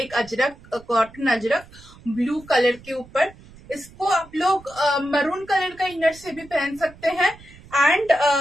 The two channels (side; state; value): right; noise; rumble, 22 dB below the sound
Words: एक Ajrak, cotton Ajrak blue colour के ऊपर। इसको आप लोग मरून कलर का इनर से भी पहन सकते हैं एंड